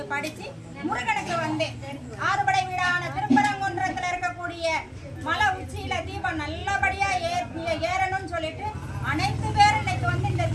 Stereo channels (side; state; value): both; identical; correlation 1.00